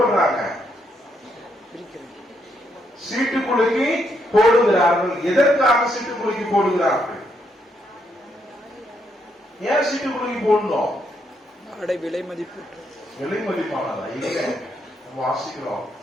சீட்டுக்குலுக்கி போடுகிறார்கள். எதற்காக சீட்டுக்குலுக்கி போடுகிறார்கள்? ஏன் சீட்டுக்குலுக்கி போடணும்? விலை மதிப்பு விலை மதிப்பானதா? இல்ல, வாசிக்கிறோம்.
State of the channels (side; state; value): both; normal; correlation 0.76